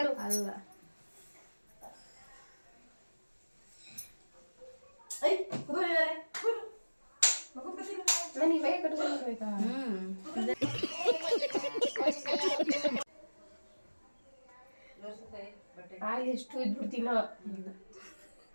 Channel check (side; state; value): both; inverted; correlation -1.00